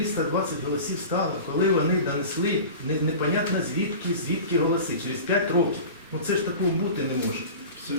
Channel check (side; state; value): both; inverted; correlation -0.35